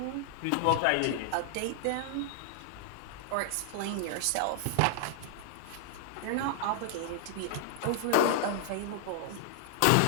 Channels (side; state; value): both; different; correlation 0.00